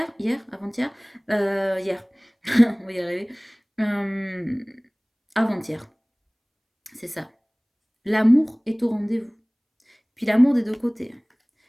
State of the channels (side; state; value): both; identical; correlation 1.00